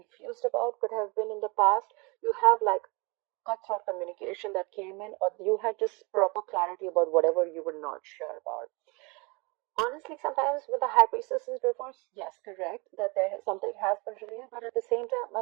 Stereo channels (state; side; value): quieter; left; 28.7 dB